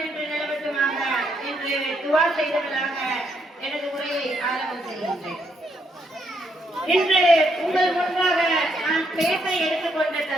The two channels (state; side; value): normal; both; correlation 0.75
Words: நிலவட்டுமாக என்று துஆ செய்தவர்களாக எனது உரையை ஆரம்பம் செய்கின்றேன். இன்று உங்கள் முன்பாக நான் பேச எடுத்துக்கொண்ட